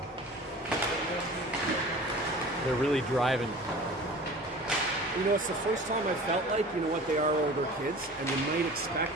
They're really driving. You know, it's the first time I felt like, you know what, they are older kids, and you might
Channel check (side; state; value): both; normal; correlation 0.41